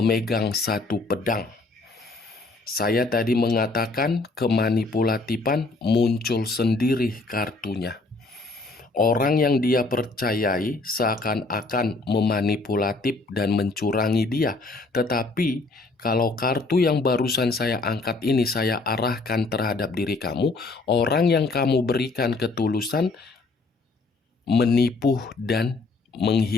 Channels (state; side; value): quieter; right; 3.5 dB